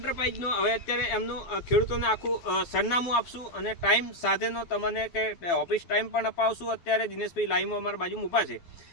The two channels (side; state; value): right; late; 12 ms